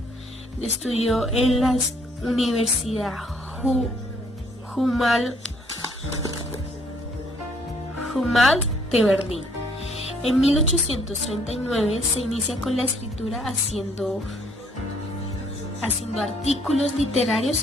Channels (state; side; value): normal; both; correlation 0.64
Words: Estudió en la Universidad Humboldt de Berlín. En 1839 se inicia con la escritura haciendo artículos